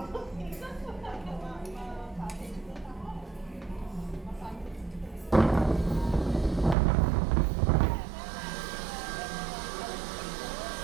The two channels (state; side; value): drops out; left; at 6.8 s